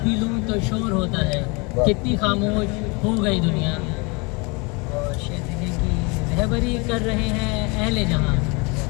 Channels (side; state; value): right; quieter; 29.1 dB